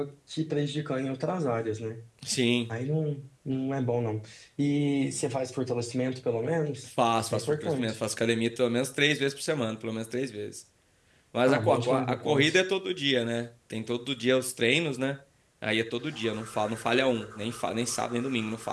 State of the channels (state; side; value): identical; both; correlation 1.00